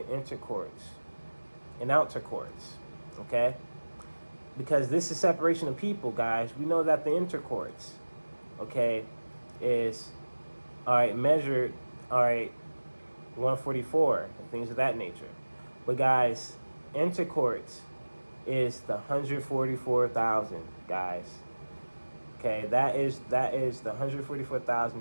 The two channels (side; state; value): both; inverted; correlation -1.00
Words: intercourts and outer courts, okay? Because this is separation of people, guys. We know that the intercourts, okay, is, all right, measured, all right, 144 and things of that nature. But guys, intercourts is the 144,000, guys. Okay, that is the